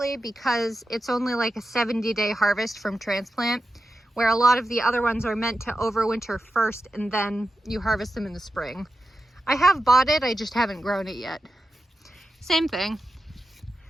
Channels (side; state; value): both; normal; correlation 0.91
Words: because it's only like a 70-day harvest from transplant, where a lot of the other ones are meant to overwinter first and then you harvest them in the spring. I have bought it, I just haven't grown it yet. Same thing.